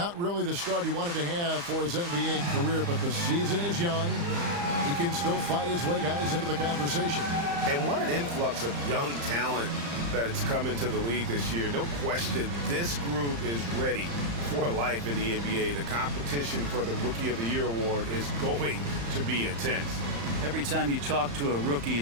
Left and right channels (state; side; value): late; left; 35 ms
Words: really the start he wanted to have for his NBA career, but the season is young. He can still fight his way, guys, into the conversation. And what an influx of young talent that it's come into the league this year. No question, this group is ready for life in the NBA. The competition for the Rookie of the Year award is going to be intense. Every time you talk to a rookie,